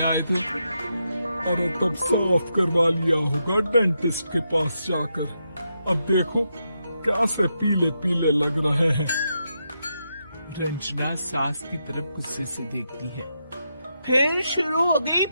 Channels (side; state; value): both; inverted; correlation -0.84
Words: आए थे। अरे तब साफ करवा लिया होगा डेंटिस्ट के पास जाकर। अब देखो कैसे पीले पीले लग रहे हैं। रंजना सास की तरफ गुस्से से देखती है। फिर शुरू हो गई